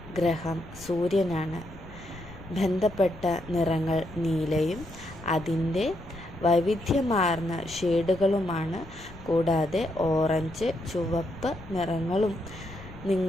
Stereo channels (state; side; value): noise; left; rumble, 18 dB below the sound